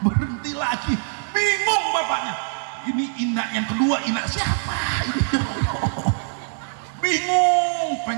berhenti lagi, bingung bapaknya. Ini Ina yang kedua, Ina siapa ini? Bingung,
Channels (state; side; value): silent; left; digital silence